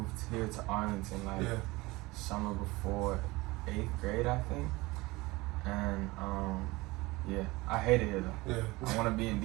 here to Arlington like summer before 8th grade, I think. And I hate it here though. Yeah. I want to be in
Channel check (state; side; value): quieter; left; 21.8 dB